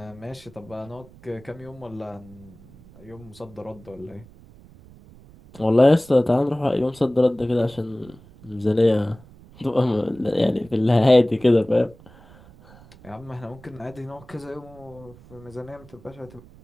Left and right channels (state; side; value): noise; right; rumble, 23 dB below the sound